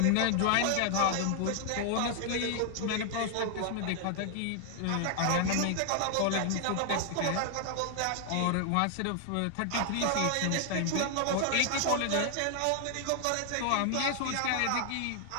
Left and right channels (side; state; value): both; different; correlation 0.00